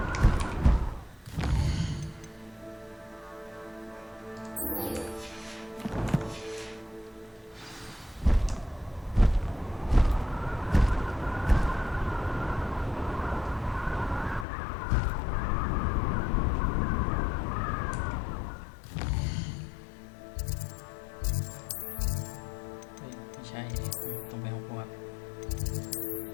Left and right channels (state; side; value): drops out; right; at 14.5 s